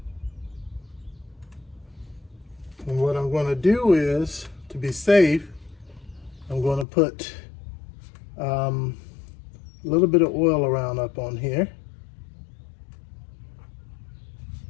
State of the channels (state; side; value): drops out; right; at 6.9 s